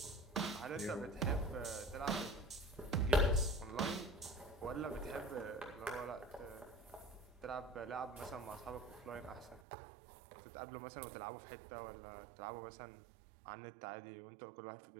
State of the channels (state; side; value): drops out; left; at 9.6 s